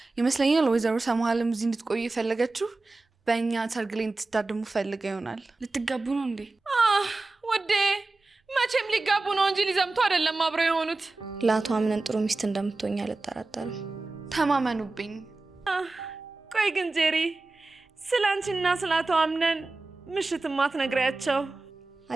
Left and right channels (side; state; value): left; quieter; 3.4 dB